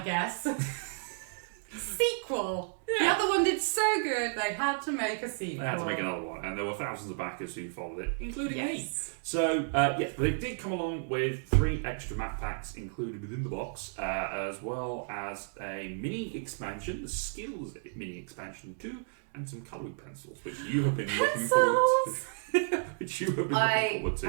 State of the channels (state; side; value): silent; left; digital silence